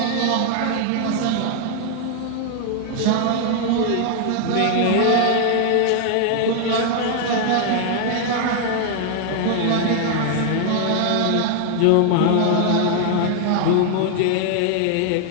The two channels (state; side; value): different; both; correlation 0.00